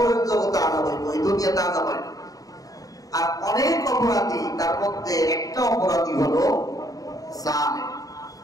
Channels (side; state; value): right; late; 0.17 ms